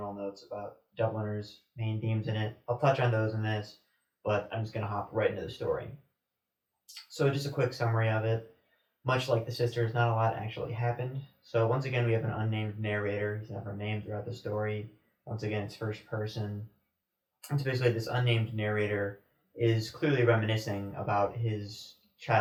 notes about Dubliners' main themes in it. I'll touch on those in this, but I'm just going to hop right into the story. So just a quick summary of it. Much like the sisters, not a lot actually happened. So once again, we have an unnamed narrator. He's never named throughout the story. Once again, it's first person. And so basically, this unnamed narrator is clearly reminiscing about his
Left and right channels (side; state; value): both; identical; correlation 1.00